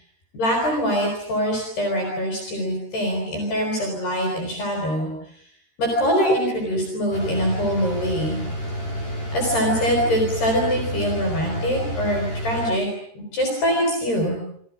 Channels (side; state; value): right; late; 13 ms